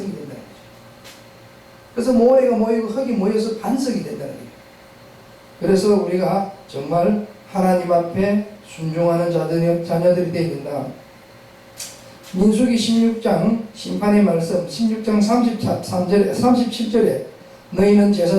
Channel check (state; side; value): identical; both; correlation 1.00